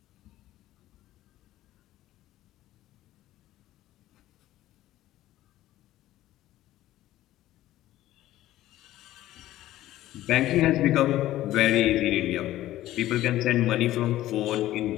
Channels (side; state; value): right; quieter; 14.7 dB